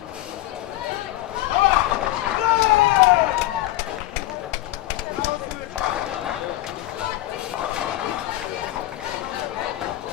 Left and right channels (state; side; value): quieter; right; 16.2 dB